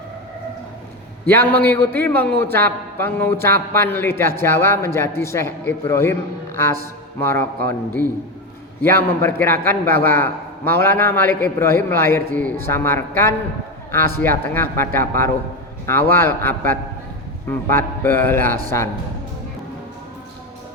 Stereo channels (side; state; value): both; normal; correlation 0.16